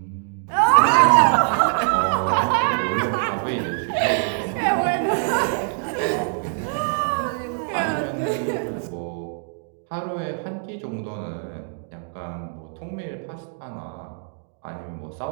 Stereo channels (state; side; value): silent; left; 63 dB below the other